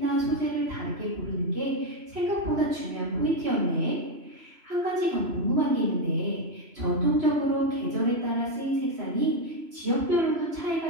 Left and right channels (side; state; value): left; late; 3.0 ms